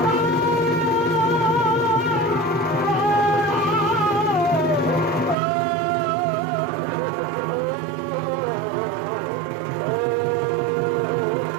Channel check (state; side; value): drops out; left; at 5.4 s